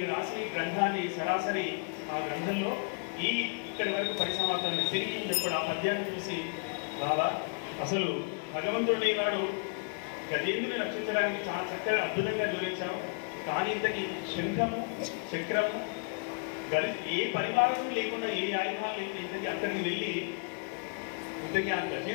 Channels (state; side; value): quieter; right; 37.4 dB